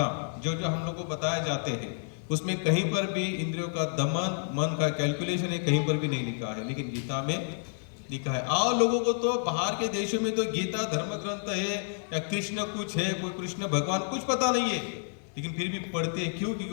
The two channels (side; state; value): right; silent; 55 dB below the other